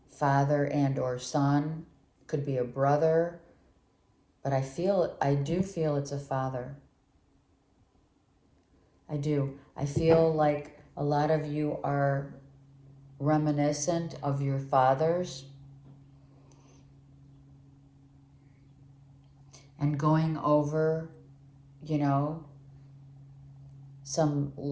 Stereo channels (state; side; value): identical; both; correlation 1.00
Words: father and or son, could be a brother, but I do feel it's a father. I do. I feel like a lot of you are reminiscent of your fathers. and going over, you know, some